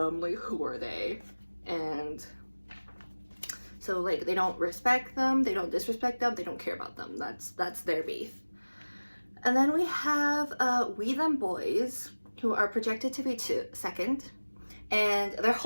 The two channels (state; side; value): inverted; both; correlation -1.00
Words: like who are they? And so like they don't respect them, they don't disrespect them, they don't care about them. That's their beef. And then we have We Them Boys, who are projected to be second, and their